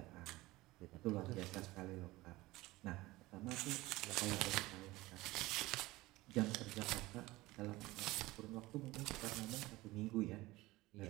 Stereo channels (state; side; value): quieter; left; 19.4 dB